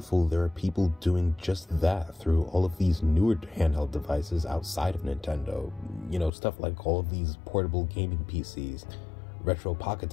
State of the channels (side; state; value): right; drops out; at 6.3 s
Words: there are people doing just that through all of these newer handheld devices outside of Nintendo. You know, stuff like all of these portable gaming PCs, retro pocket